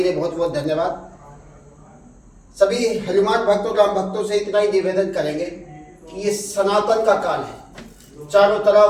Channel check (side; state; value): both; identical; correlation 1.00